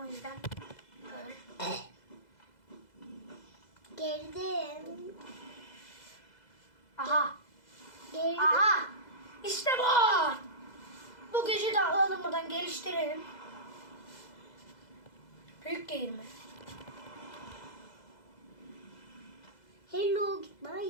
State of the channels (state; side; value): late; right; 2.0 ms